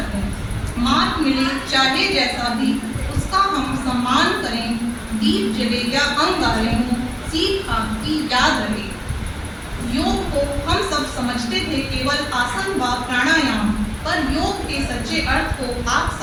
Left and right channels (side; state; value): both; identical; correlation 1.00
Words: मार्ग मिले चाहे जैसा भी उसका हम सम्मान करें, दीप जले या अंगारे हों सीख आपकी याद रहे। योग को हम सब समझते थे केवल आसन व प्राणायाम, पर योग के सच्चे अर्थ को आप